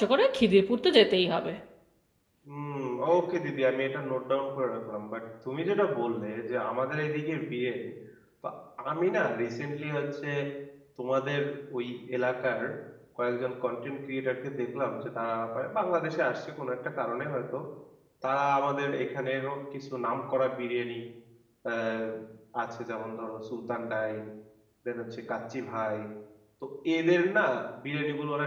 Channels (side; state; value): both; identical; correlation 1.00